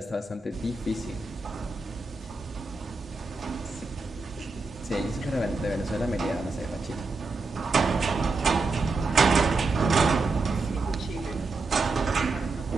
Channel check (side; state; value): left; quieter; 3.7 dB